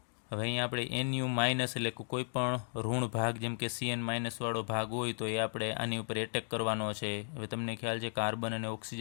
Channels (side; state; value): right; silent; 54 dB below the other